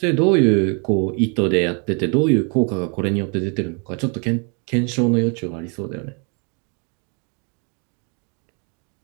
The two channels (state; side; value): quieter; left; 36.8 dB